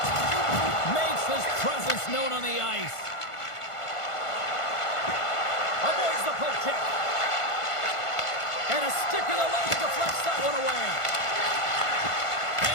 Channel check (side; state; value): right; late; 1.5 ms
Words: Makes his presence known on the ice. Avoids the poke check. And a stick in the leg deflects that one away.